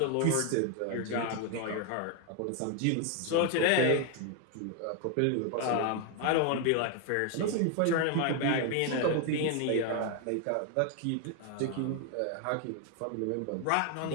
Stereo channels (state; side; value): different; both; correlation 0.01